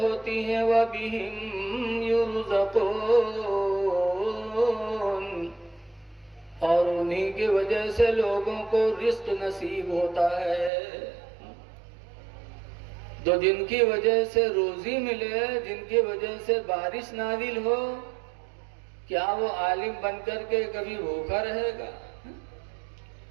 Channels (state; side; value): drops out; left; at 10.7 s